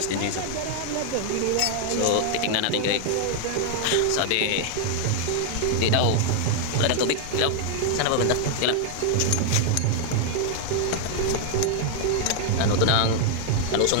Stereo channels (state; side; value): different; both; correlation 0.00